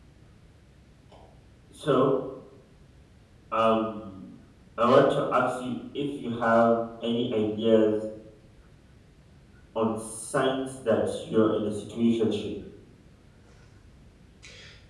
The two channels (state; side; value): identical; both; correlation 1.00